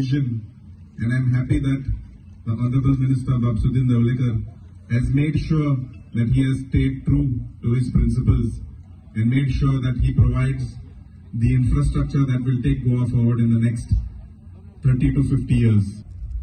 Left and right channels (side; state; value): both; identical; correlation 1.00